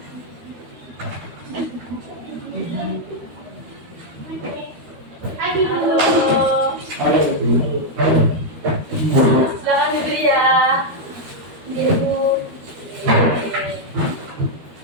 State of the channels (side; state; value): left; late; 13 ms